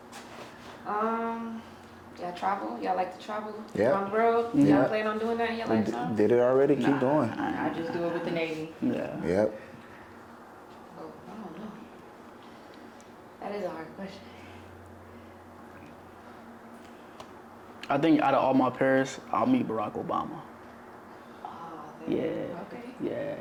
Y'all travel? Y'all like to travel? Yeah. On the road? Yeah. Y'all plan on doing that in your lifetime? Did it already? Keep going. I just do it with the Navy. Yeah. Yep. Oh, I don't know. That is a hard question. I think out of all my peers, I'll meet Barack Obama. Yeah. Okay. Yeah.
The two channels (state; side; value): identical; both; correlation 1.00